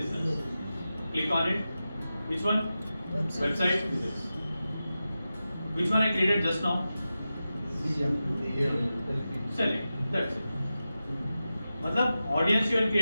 Click on it. Which one? Website. This. Which one I created just now? Select. That's it. मतलब audience you are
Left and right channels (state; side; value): inverted; both; correlation -0.93